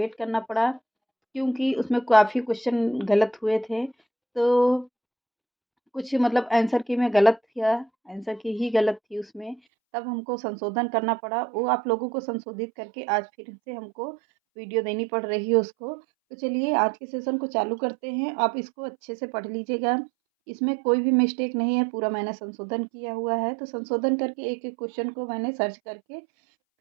करना पड़ा क्योंकि उसमें काफ़ी क्वेश्चन गलत हुए थे। तो कुछ मतलब आंसर की में गलत था, आंसर की ही गलत थी उसमें, तब हमको संशोधन करना पड़ा। वो आप लोगों को संशोधित करके आज फिर से हमको वीडियो देनी पड़ रही है उसको। तो चलिए आज के सेशन को चालू करते हैं। आप इसको अच्छे से पढ़ लीजिएगा, इसमें कोई भी मिस्टेक नहीं है, पूरा मैंने संशोधन किया हुआ है। तो संशोधन करके एक-एक क्वेश्चन को मैंने सर्च करके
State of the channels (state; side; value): drops out; left; at 9.6 s